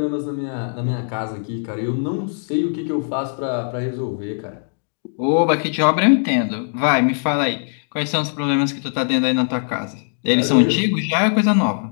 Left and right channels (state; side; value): silent; right; digital silence